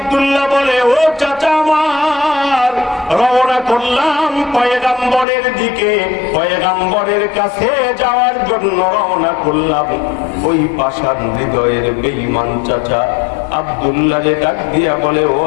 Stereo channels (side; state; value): right; drops out; at 5.2 s